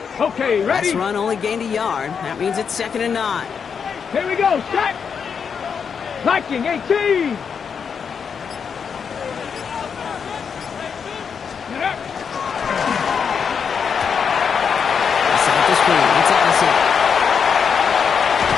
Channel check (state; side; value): quieter; right; 6.6 dB